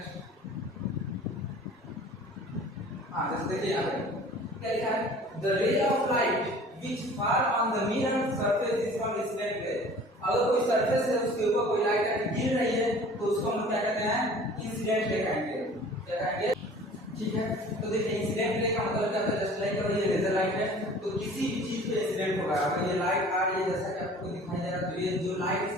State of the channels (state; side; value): normal; both; correlation 0.46